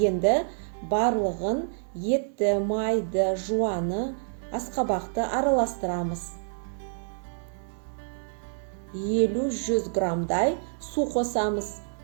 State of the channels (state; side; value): silent; left; digital silence